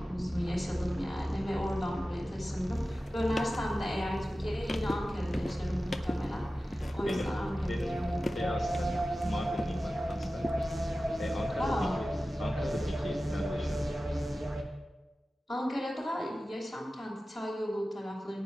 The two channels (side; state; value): both; normal; correlation 0.95